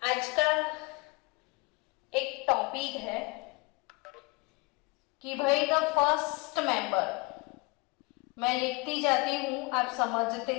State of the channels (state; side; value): quieter; right; 26.7 dB